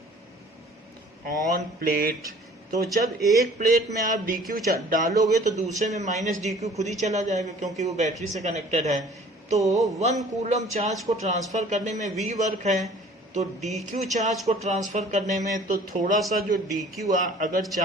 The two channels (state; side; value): normal; both; correlation 0.51